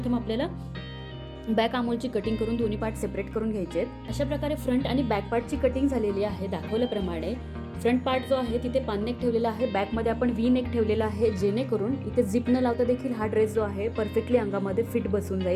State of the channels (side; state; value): both; identical; correlation 1.00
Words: आपल्याला बॅक आर्महोलची कटिंग करून दोन्ही पार्ट सेपरेट करून घ्यायचे. अशा प्रकारे फ्रंट आणि बॅक पार्टची कटिंग झालेली आहे दाखवल्याप्रमाणे. फ्रंट पार्ट जो आहे तिथे पान नेक ठेवलेला आहे, बॅकमध्ये आपण व्ही नेक ठेवलेला आहे, जेणेकरून इथे झिप न लावता देखील हा ड्रेस जो आहे परफेक्टली अंगामध्ये फिट बसून